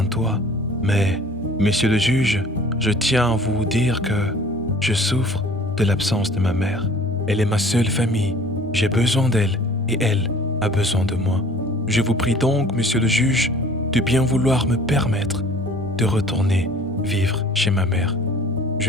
toit, mais, monsieur le juge, je tiens à vous dire que je souffre de l'absence de ma mère. Elle est ma seule famille, j'ai besoin d'elle et elle a besoin de moi. Je vous prie donc, monsieur le juge, de bien vouloir me permettre de retourner vivre chez ma mère.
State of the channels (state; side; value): normal; both; correlation 0.49